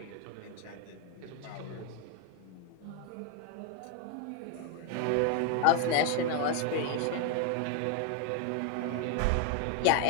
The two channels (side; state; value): both; different; correlation 0.01